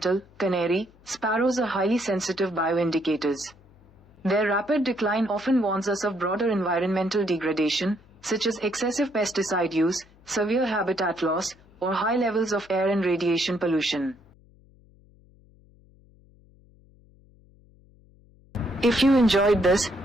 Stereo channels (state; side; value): noise; left; hum, 28 dB below the sound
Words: canary. Sparrows are highly sensitive bioindicators. Their rapid decline often warns us of broader environmental degradation, such as excessive pesticide use, severe habitat loss, or high levels of air and radiation pollution. If you enjoyed this,